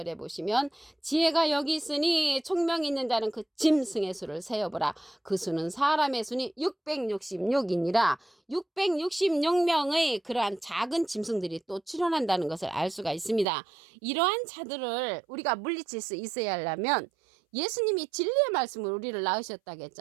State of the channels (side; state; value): left; drops out; at 13.5 s